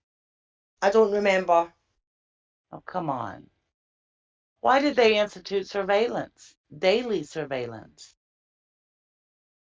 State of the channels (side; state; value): both; identical; correlation 1.00